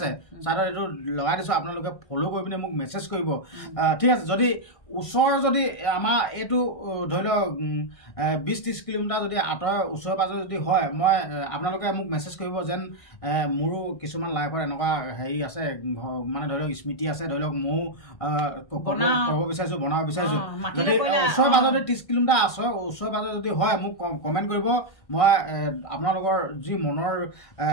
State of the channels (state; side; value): late; right; 1.5 ms